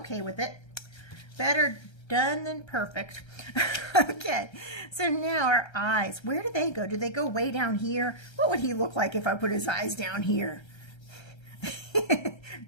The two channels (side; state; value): right; late; 1.3 ms